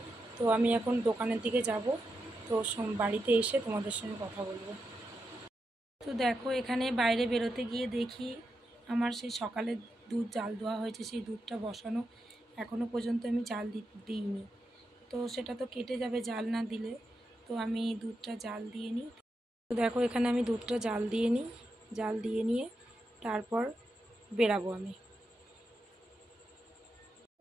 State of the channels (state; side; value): normal; both; correlation 0.86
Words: তো আমি এখন দোকানের দিকে যাব, তো বাড়িতে এসে তোমাদের সঙ্গে কথা বলবো। তো দেখো এখানে বাইরে বেরোতে গিয়ে দেখি আমার সেই সকালে দুধ জাল দেওয়া হয়েছে, সেই দুধটা বসানো এখনও পর্যন্ত আমি জাল দিইনি। তো সেটা তো কেটে যাবে জাল না দিলে। তো আমি দুধটা জাল দিয়ে নিই। তো দেখো এখানে আমি দুধটা জাল দিয়ে নিয়ে তারপর বেরাবো আমি।